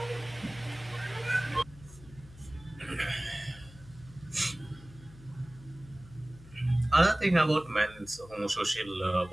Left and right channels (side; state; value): left; noise; hum, 20 dB below the sound